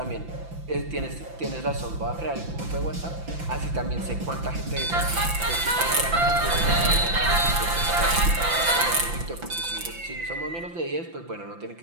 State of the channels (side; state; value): left; late; 5.9 ms